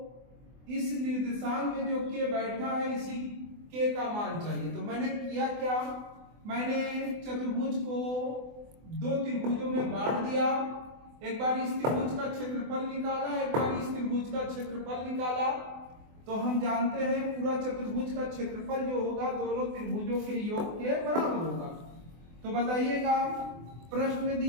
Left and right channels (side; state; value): left; late; 24 ms